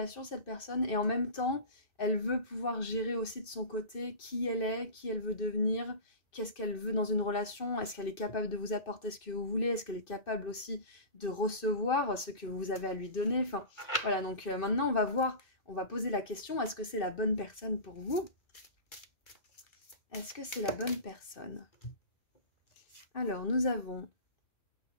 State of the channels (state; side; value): late; right; 2.5 ms